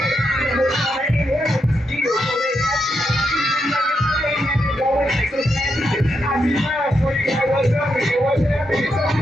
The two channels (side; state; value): both; normal; correlation 0.82